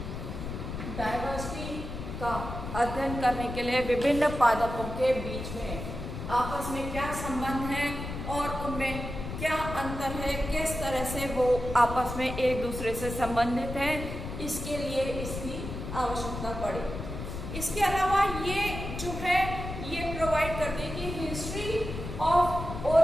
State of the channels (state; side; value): noise; left; rumble, 7 dB below the sound